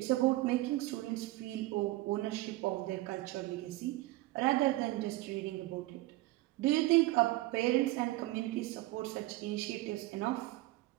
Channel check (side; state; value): left; quieter; 18.6 dB